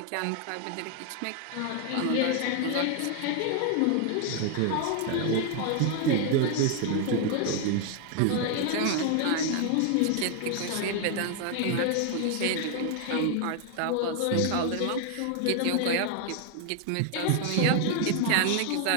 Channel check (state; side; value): different; both; correlation 0.00